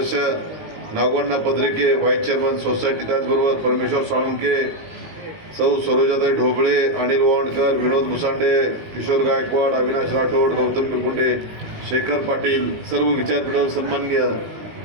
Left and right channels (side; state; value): left; late; 19 ms